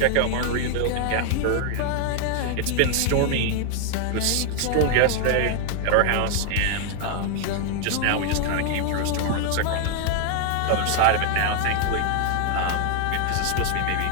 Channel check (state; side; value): different; both; correlation 0.00